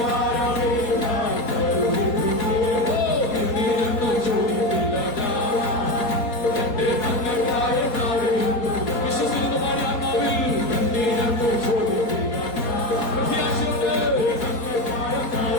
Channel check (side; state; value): right; late; 4.2 ms